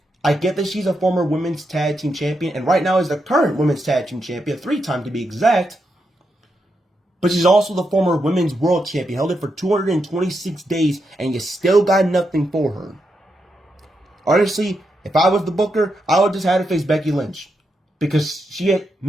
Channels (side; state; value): both; normal; correlation 0.84